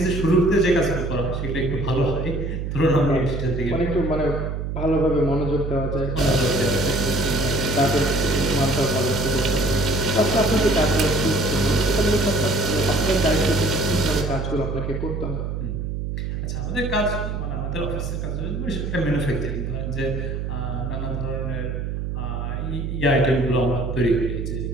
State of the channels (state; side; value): noise; right; hum, 3 dB below the sound